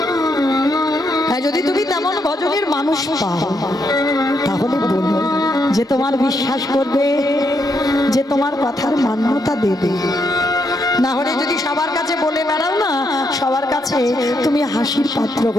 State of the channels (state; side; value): normal; both; correlation 0.78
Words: হ্যাঁ, যদি তুমি তেমন ভজনের মানুষ পাও, তাহলে বলো, যে তোমার বিশ্বাস করবে, যে তোমার কথার মান্যতা দেবে। না হলে যদি সবার কাছে বলে বেড়াও না, সবার কাছে তুমি হাসির পাত্র